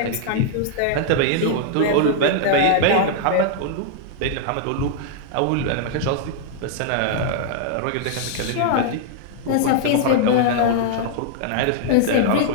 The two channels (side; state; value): both; different; correlation -0.01